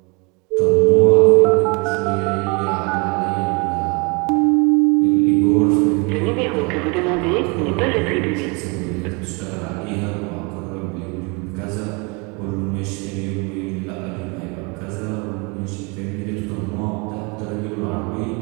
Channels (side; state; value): left; quieter; 30.1 dB